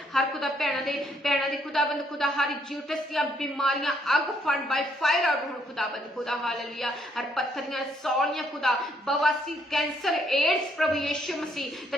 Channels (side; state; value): both; normal; correlation 0.70